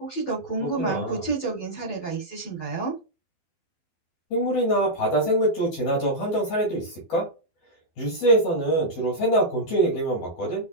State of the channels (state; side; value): late; right; 12 ms